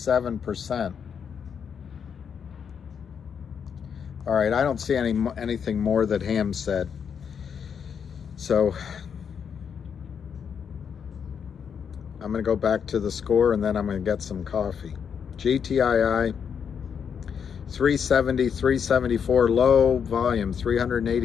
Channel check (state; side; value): quieter; right; 7.2 dB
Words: All right, I don't see anything more that Ham said. So I'm going to go back to the score and then I'm going to get some coffee. GTII 370, 374 low volume,